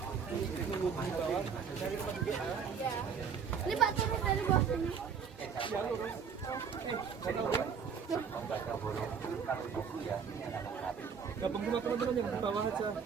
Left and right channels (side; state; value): left; quieter; 6.6 dB